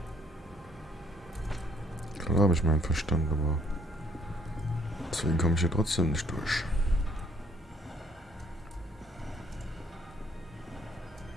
Klar habe ich meinen Verstand, aber deswegen komme ich hier trotzdem nicht durch.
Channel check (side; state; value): both; normal; correlation 0.64